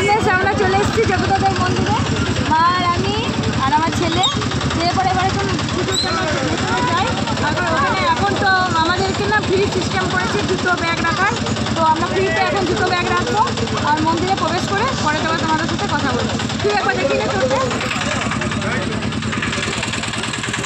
আমরা চলে এসেছি জগন্নাথ দেবের মন্দিরে, মা আর আমি আর আমার ছেলে। যে পরে এবার এখন পুজোর জন্য যাই। ওখানে এখন তো আমাদেরকে না ফ্রি সিস্টেম করেছে দুটো ব্যাগ রাখার। তো আমরা ফ্রিতে এখন দুটো ব্যাগ রাখবো আর মন্দিরে প্রবেশ করে পরে তোমার তোমাদের সাথে কথা বলবো। তুই একবার দেখি না চলবে।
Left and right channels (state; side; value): identical; both; correlation 1.00